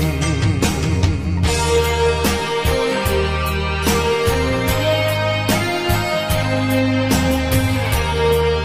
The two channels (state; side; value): identical; both; correlation 1.00